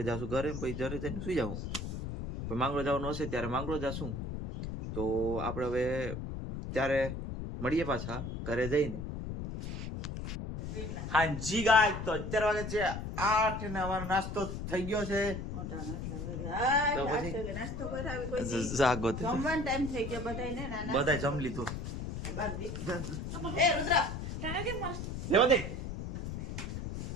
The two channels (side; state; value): left; noise; rumble, 5 dB below the sound